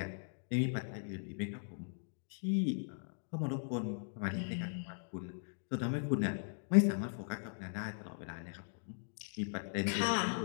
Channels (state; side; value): silent; right; digital silence